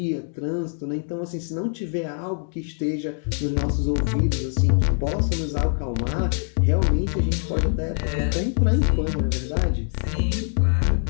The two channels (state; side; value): silent; right; 56 dB below the other